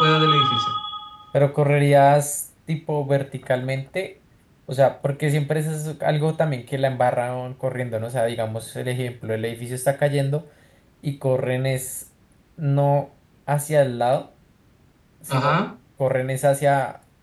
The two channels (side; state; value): both; identical; correlation 1.00